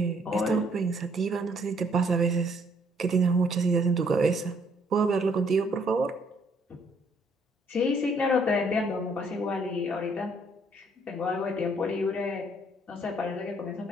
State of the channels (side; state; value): both; normal; correlation 0.66